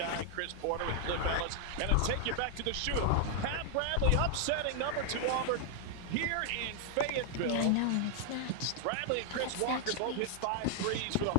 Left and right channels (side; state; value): both; different; correlation 0.00